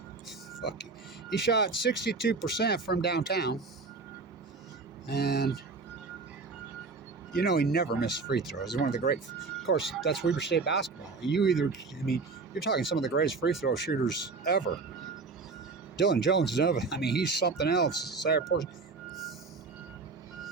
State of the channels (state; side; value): quieter; left; 4.3 dB